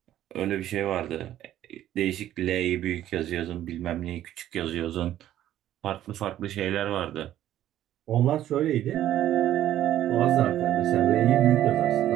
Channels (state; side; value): quieter; left; 12.5 dB